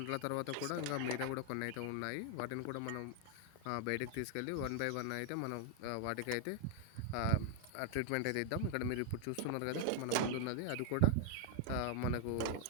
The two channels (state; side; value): different; both; correlation 0.00